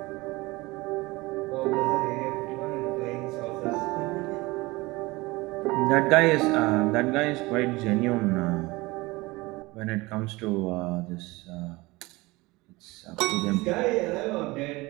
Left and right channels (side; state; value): left; quieter; 22.1 dB